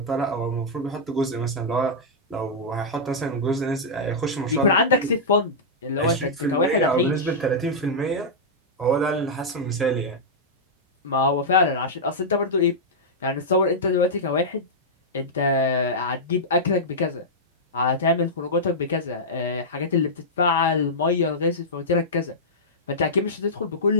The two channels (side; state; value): both; normal; correlation -0.10